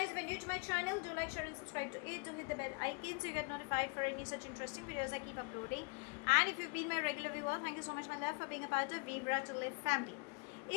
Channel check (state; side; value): quieter; right; 33.6 dB